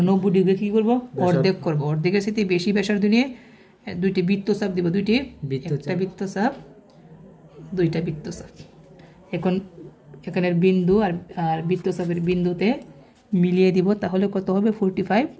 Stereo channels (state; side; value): identical; both; correlation 1.00